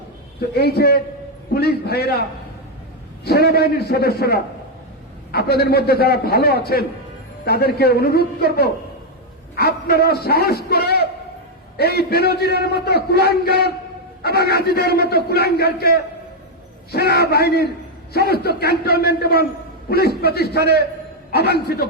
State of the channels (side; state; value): both; normal; correlation 0.01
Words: তো এই যে পুলিশ ভাইয়েরা, সেনাবাহিনীর সদস্যরা, আপনাদের মধ্যে যারা ভালো আছেন, তাদেরকে অনুরোধ করব, আপনারা সাহস করে এই বেনজিরের মতো কুলাঙ্গার এবং আজিদের মতো কুলাঙ্গারকে সেনাবাহিনীর সমস্ত ক্যান্টনমেন্ট এবং পুলিশ প্রতিষ্ঠানে অবাঞ্ছিত